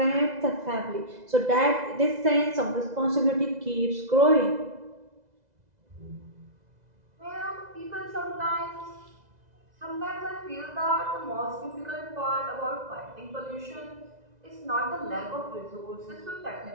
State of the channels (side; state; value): left; late; 2.0 ms